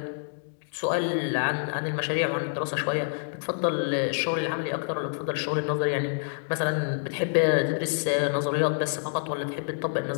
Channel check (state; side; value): silent; right; digital silence